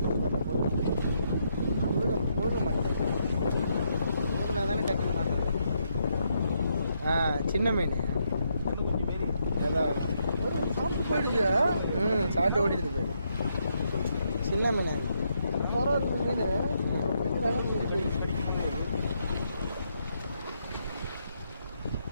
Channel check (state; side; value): inverted; both; correlation -0.77